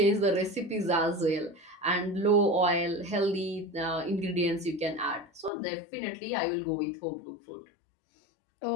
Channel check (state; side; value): drops out; right; at 5.5 s